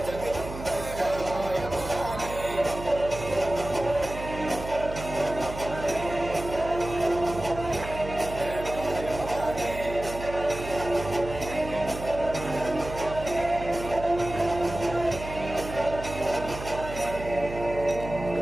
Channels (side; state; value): right; noise; hum, 10 dB below the sound